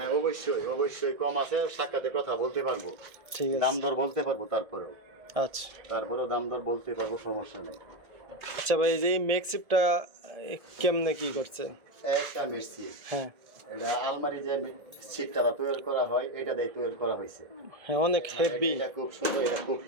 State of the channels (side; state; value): left; late; 1.7 ms